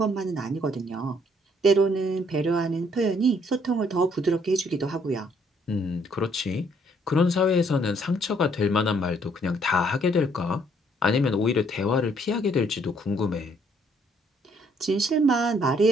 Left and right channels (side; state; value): both; normal; correlation 0.66